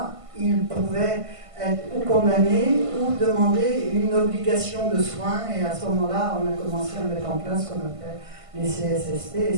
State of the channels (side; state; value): left; late; 1.5 ms